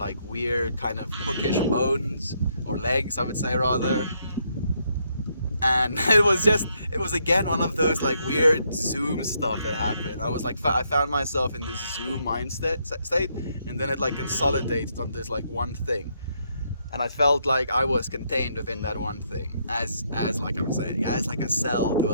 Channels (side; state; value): both; inverted; correlation -0.74